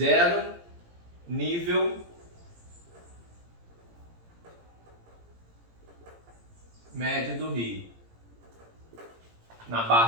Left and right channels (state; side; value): late; left; 17 ms